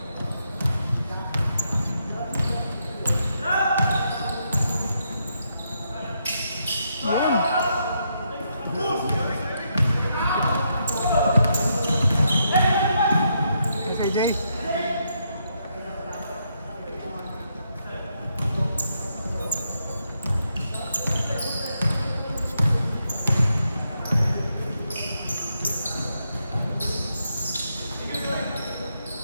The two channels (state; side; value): inverted; both; correlation -0.79